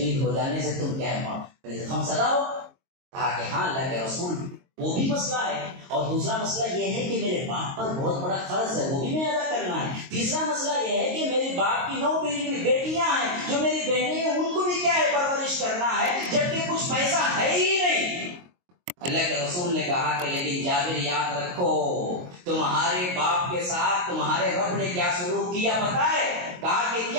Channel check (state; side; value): late; left; 22 ms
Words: ہو جانے سے تم کیا غم زدہ ہو؟ کہا کہ ہاں اللہ کے رسول وہ بھی مسئلہ ہے، اور دوسرا مسئلہ یہ ہے کہ میرے باپ پر بہت بڑا قرض ہے، وہ بھی میں ادا کرنا ہے۔ تیسرا مسئلہ یہ ہے کہ میرے باپ کی 9 بیٹیاں ہیں جو میری بہنیں ہیں، ان کو بھی کیا ہے پرورش کرنا ہے، جبکہ کچھ پیسہ ہے ہی نہیں۔ اللہ کے رسول نے کہا کہ لیکن جابر یاد رکھو تمہارے باپ کے ساتھ تمہارے رب نے کیا سلوک کیا پتہ ہے؟ کہا کہ